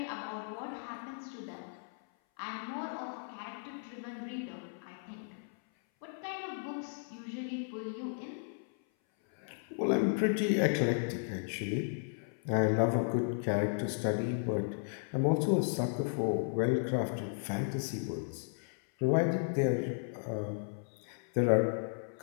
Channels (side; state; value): right; silent; 55 dB below the other